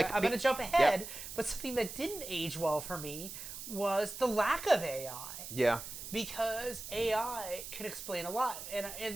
going to jump ahead, but something that didn't age well for me was the lack of AI. Yeah. Because AI can explain a lot.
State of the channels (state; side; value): noise; right; hiss, 10 dB below the sound